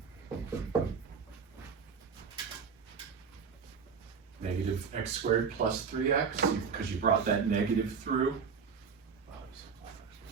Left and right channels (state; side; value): quieter; left; 6.0 dB